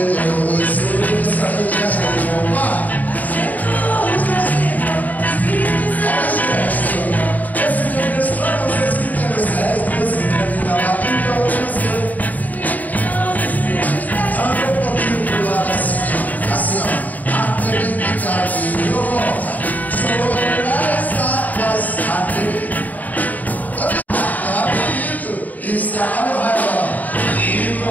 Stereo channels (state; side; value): late; right; 0.078 ms